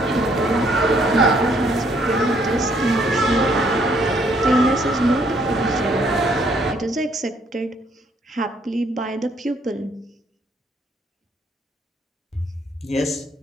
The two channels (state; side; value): normal; both; correlation 0.67